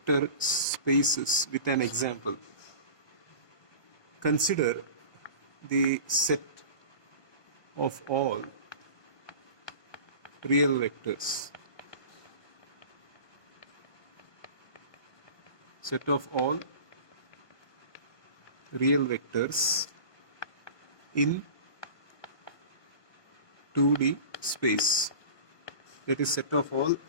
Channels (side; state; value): right; late; 1.3 ms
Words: spaces with an example. Consider the set of all real vectors. Set of all real vectors in 2D space. That is, set of all